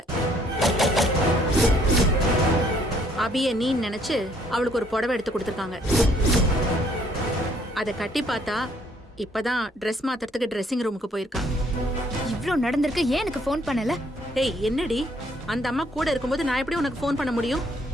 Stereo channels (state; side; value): normal; both; correlation 0.65